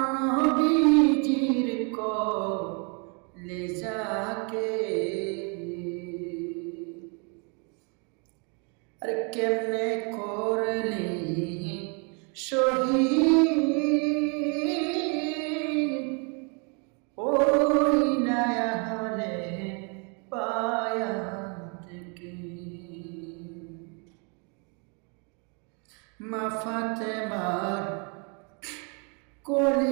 নবীজির কলেজাকে, আরে কেমনে করলে শহীদ ওই নয়া হলে পায়া থেকে মা ফাতেমার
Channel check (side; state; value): left; quieter; 35.3 dB